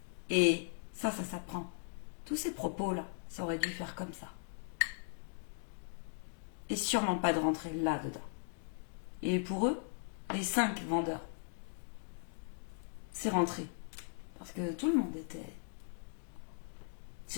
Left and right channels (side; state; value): right; silent; digital silence